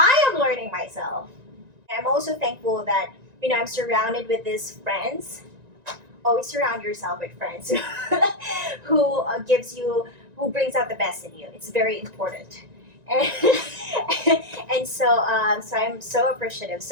am learning myself. I'm also thankful that I'm surrounded with these friends. Always surround yourself with friends who who brings out the best in you. It's very important. And so I'm so appreciative.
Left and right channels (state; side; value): late; left; 1.9 ms